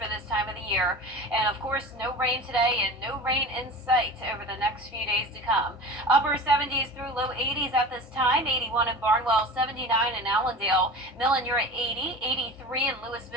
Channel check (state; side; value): normal; both; correlation 0.34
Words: this time of the year. And of course, no rain today and no rain in sight over the next few days to come. Upper 70s through low 80s at this time, 81 in Barnwell, 79 in Allendale, Millen, you're at 80, 83 in